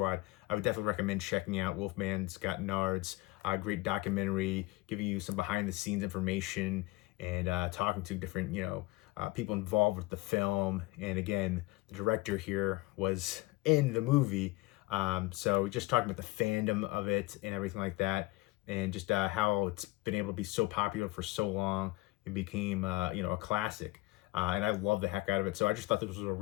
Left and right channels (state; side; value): quieter; right; 20.6 dB